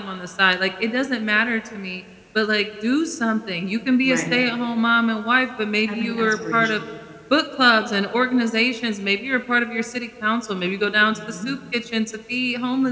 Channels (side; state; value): both; identical; correlation 1.00